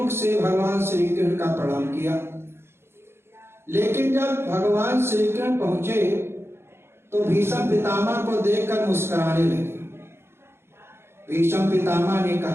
से भगवान श्री कृष्ण का प्रणाम किया। लेकिन जब भगवान श्री कृष्ण पहुंचे तो भीष्म पितामह को देखकर मुस्कुराने लगे। भीष्म पितामह ने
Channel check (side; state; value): left; late; 0.12 ms